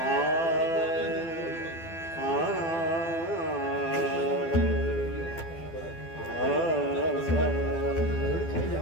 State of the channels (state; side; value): late; right; 12 ms